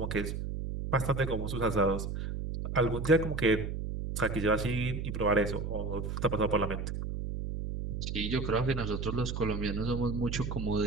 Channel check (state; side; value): noise; right; hum, 4 dB below the sound